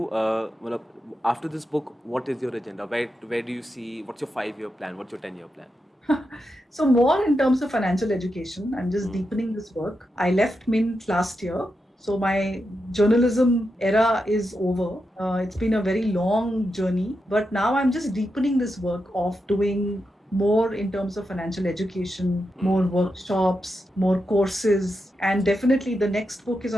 after this book, what is your agenda? Where do you see? What's your 5-year plan? What's your 10-year plan? So more in terms of financial education, I'm just deepening this work. I left Mint last year. So my journalism era is over. It's been a very long journey, but now I'm just deepening this work of doing more in terms of financial education, more workshops, more courses, and definitely the next book is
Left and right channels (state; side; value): normal; both; correlation 0.87